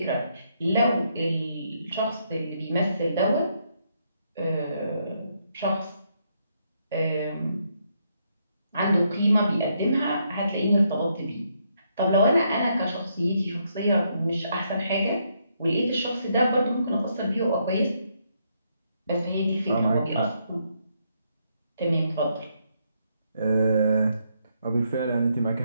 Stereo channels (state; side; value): inverted; both; correlation -0.76